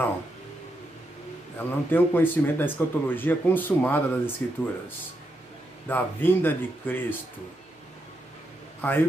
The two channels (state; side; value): normal; both; correlation 0.82